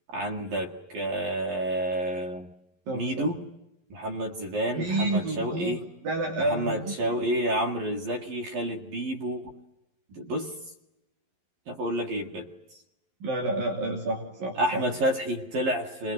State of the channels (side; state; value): left; late; 11 ms